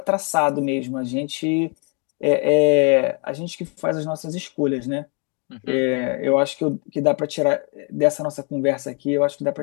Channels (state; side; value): quieter; right; 36.8 dB